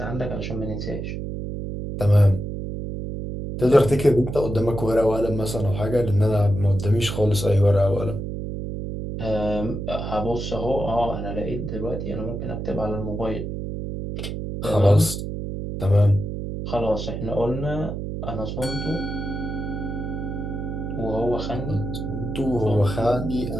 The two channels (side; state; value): right; noise; hum, 5 dB below the sound